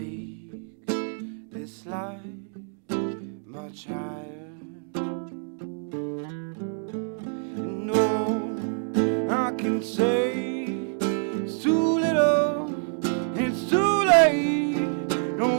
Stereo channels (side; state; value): left; silent; 60 dB below the other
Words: this life much higher. I can say it's too little, it's too late.